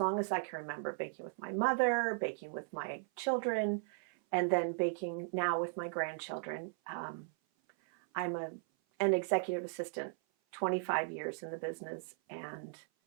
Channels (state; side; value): silent; left; 53 dB below the other